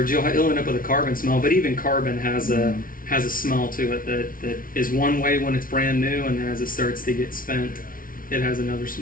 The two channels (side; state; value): right; late; 0.41 ms